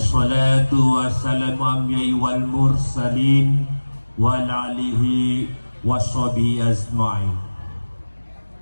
wassalamu amyai wal mursalin wal alihi washabi azma'in.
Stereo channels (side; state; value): both; inverted; correlation -1.00